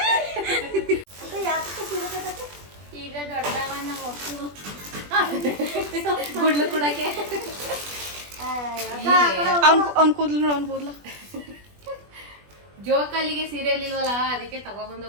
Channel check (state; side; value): late; left; 20 ms